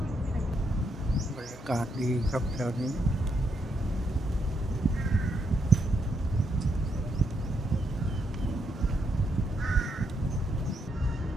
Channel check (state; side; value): normal; both; correlation 0.78